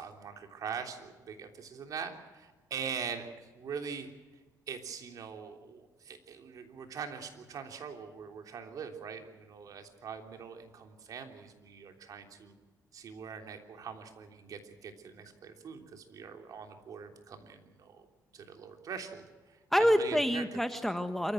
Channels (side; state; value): both; normal; correlation 0.79